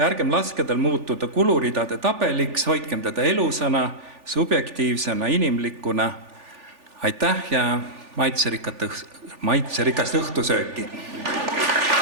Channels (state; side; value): late; left; 3.4 ms